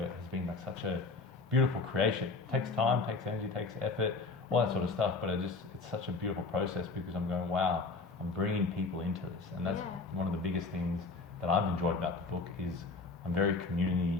has been like such a beautiful creation. It takes time, takes energy, takes effort, all that sort of stuff, but it's such a beautiful process, because I'm going, wow, I'm bringing people into this. And that's one of the biggest things that I've enjoyed about the book is I'm very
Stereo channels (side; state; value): right; quieter; 4.0 dB